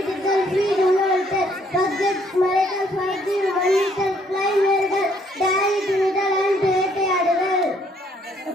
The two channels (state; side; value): normal; both; correlation 0.66